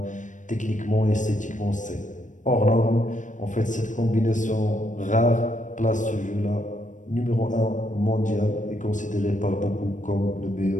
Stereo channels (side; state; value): right; late; 0.37 ms